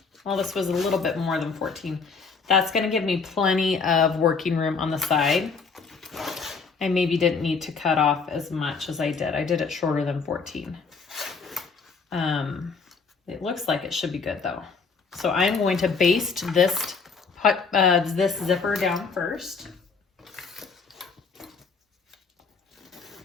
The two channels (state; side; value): quieter; right; 5.0 dB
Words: well, this was a little bit more than 14. That's going to give me plenty of working room on the side. I maybe didn't need to cut off as much as I did. I did it shorter than 14. It looks like it should be good though. So I'm going to baste this zipper down first.